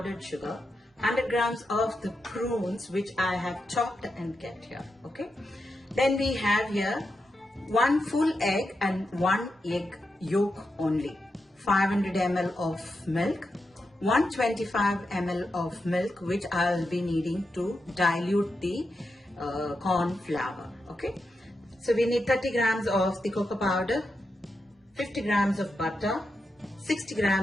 sugar, 100 grams of the prunes which I have chopped and kept here, okay? Then we have here 1 full egg and 1 egg yolk only, 500 ml of milk, 125 ml of milk which I'll be needing to dilute the corn flour, okay? So we need 30 grams of the cocoa powder, 50 grams of butter, 60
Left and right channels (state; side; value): normal; both; correlation 0.87